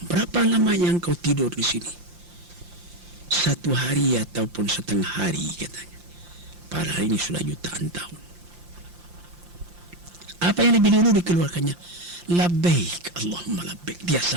berapa lama yang kau tidur di sini? 1 hari ataupun setengah hari, katanya. Padahal ini sudah jutaan tahun. Apa yang lebih dulu dikeluarkannya? Labbaik Allahumma labbaik. Dia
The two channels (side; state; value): left; late; 5.7 ms